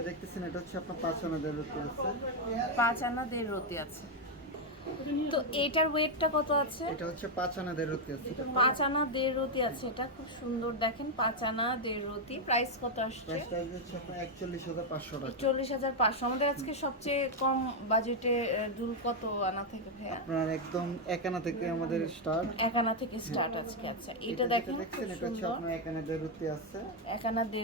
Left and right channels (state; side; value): normal; both; correlation 0.02